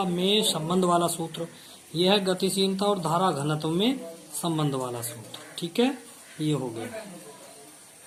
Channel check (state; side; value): identical; both; correlation 1.00